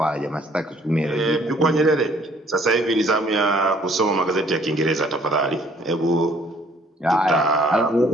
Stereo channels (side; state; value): both; normal; correlation 0.60